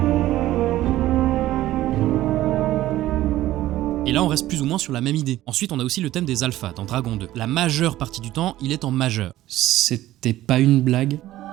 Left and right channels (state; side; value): quieter; left; 14.9 dB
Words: Et là on reste plus ou moins sur la même idée. Ensuite on a aussi le thème des alphas dans Dragon 2. La majeure partie du temps, il est en majeur. C'était pas une blague